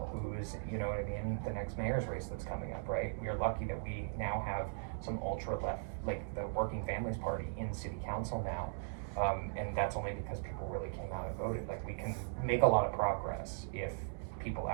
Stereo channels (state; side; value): silent; left; digital silence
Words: Who's, you know what I mean? The next mayor's race that's coming up, right? We are lucky that we now have some ultra left, like the Working Families Party in city council now. And that's only because people really came out and voted. Like we can make a lot of progress if people